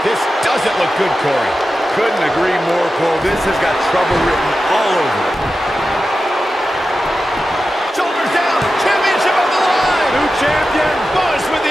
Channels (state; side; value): normal; both; correlation 0.92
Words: This doesn't look good, Corey. Couldn't agree more, Cole. This has got trouble written all over it. Shoulders down. Championship on the line. New champion. Buzz with